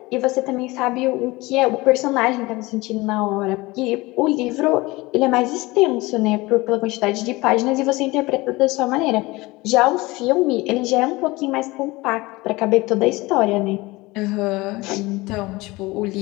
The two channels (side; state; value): right; quieter; 21.7 dB